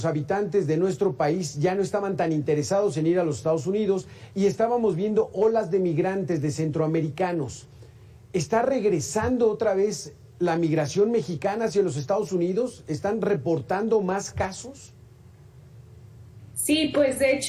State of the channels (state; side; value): identical; both; correlation 1.00